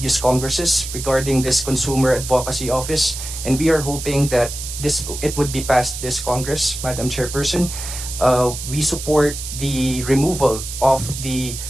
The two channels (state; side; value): noise; right; hiss, 8 dB below the sound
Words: Congresses regarding this consumer advocacy office, and we are hoping that it would be passed this Congress, Madam Chairperson. We support the removal of the